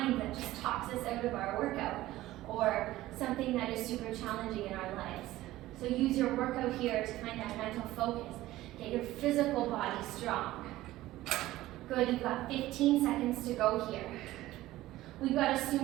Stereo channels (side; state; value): left; quieter; 16.2 dB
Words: that just talks us out of our workout, or something that is super challenging in our lives. So use your workout here to find that mental focus. Get your physical body strong. Good, you've got 15 seconds to go here. We've got a